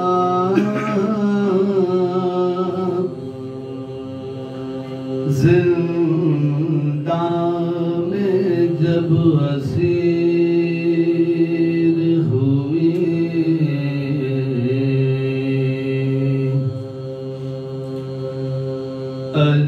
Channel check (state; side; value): identical; both; correlation 1.00